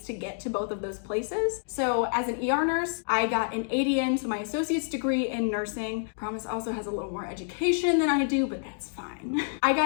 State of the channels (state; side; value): silent; right; digital silence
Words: to get to both of those places. So as an ER nurse, I got an ADN, so my associate's degree in nursing. Promise also has a little more education than I do, but that's fine. I